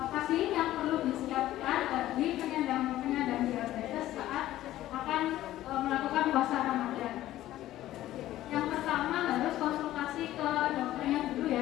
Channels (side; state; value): right; quieter; 14.3 dB